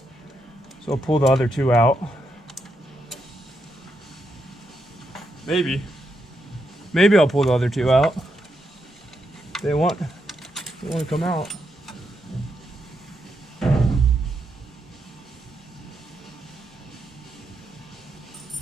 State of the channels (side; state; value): both; normal; correlation 0.81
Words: So I'll pull the other two out. Maybe I'll pull the other two out. They want to come out.